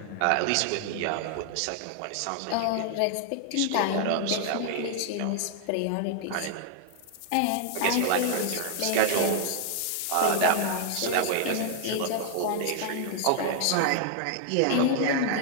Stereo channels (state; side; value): different; both; correlation 0.00